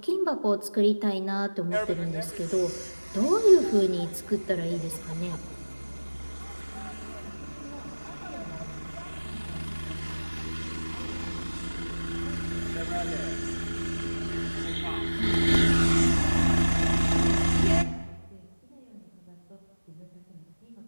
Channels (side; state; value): both; inverted; correlation -1.00